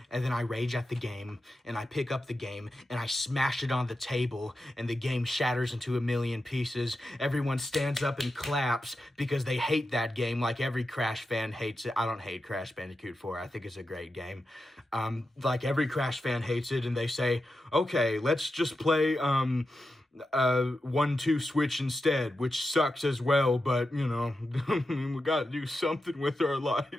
and then I rage at the game, and I pick up the game, and I smash it on the table, and the game shatters into a million pieces. Everyone stands up and claps because they hate that game like every Crash fan hates it. I don't hate Crash Bandicoot 4. I think it's a great game. Like every Crash fan hates it, and they say, okay, let's just play 1-2 switch instead, which sucks as well, but we gotta do something with our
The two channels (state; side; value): normal; both; correlation 0.89